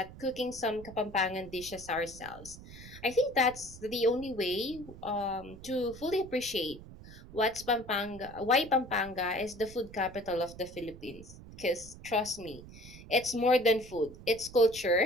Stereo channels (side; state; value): right; noise; rumble, 16 dB below the sound